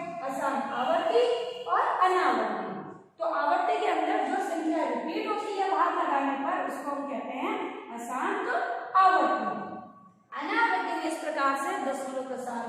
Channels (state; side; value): identical; both; correlation 1.00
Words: असार आवर्ती और अनावर्ती। तो आवर्ती के अंदर जो संख्या रिपीट होती है भाग लगाने पर उसको हम कहते हैं अशांत आवर्ती। अनावर्ती में इस प्रकार से दशमलव प्रसार